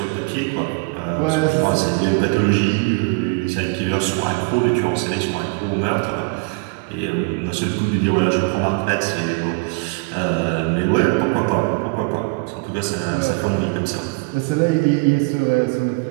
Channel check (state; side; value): quieter; left; 32.6 dB